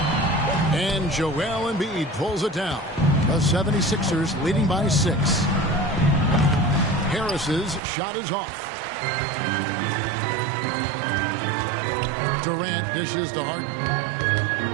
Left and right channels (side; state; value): left; drops out; at 7.8 s